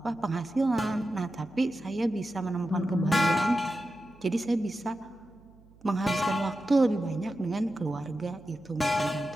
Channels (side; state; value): right; noise; hum, 26 dB below the sound